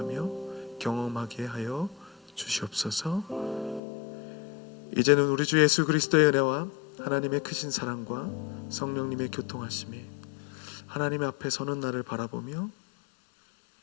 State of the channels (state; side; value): drops out; right; at 3.8 s